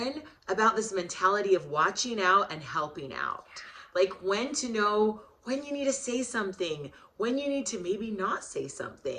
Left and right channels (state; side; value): identical; both; correlation 1.00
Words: about this mentality of watching out and helping out. Like when to know when you need to say something, when you need to maybe not say